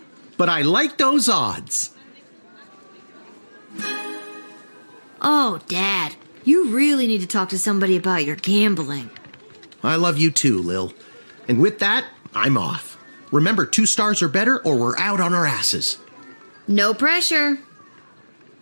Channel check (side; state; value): both; inverted; correlation -1.00